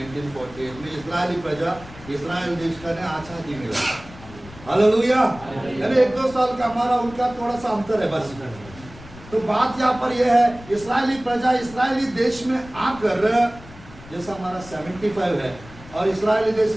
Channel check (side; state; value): left; noise; rumble, 18 dB below the sound